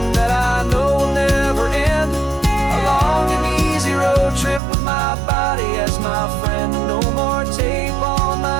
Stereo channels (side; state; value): left; drops out; at 4.6 s